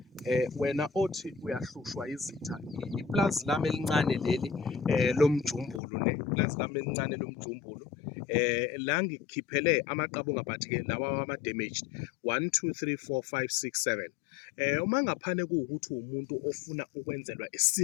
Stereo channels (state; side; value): drops out; right; at 5.8 s